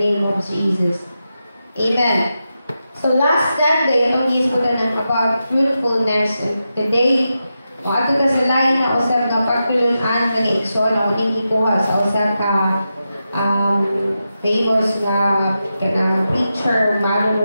of Jesus. Amen. So last Sunday, itong isputan about fruitfulness, and today, ato ka sa lain na usap nga pagtulunan ng Igsoon, o ning ikuha sa usap ka famous nga preacher,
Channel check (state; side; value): inverted; both; correlation -0.89